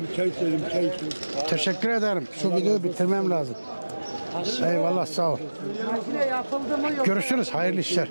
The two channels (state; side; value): inverted; both; correlation -1.00